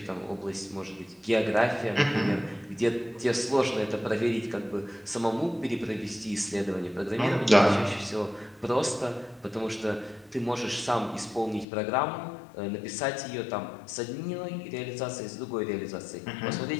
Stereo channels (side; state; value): right; drops out; at 11.7 s